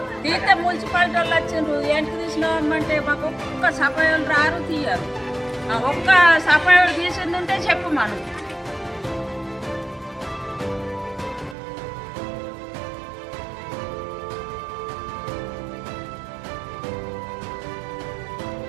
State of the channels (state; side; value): drops out; left; at 11.6 s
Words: తీస్తే మున్సిపాలిటీ వాళ్ళు వచ్చిండ్రు, ఏంటికి తీసినామంటే మాకు ఒక్క సఫాయిలు రారు తీయరు. ఒక్క సఫాయిలు తీసింది ఉంటే చెప్పు మనం.